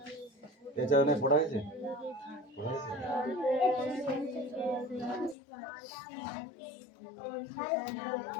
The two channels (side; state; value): right; drops out; at 5.4 s